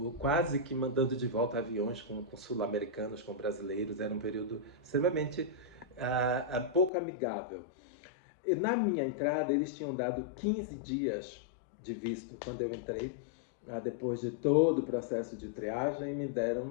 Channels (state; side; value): drops out; right; at 6.9 s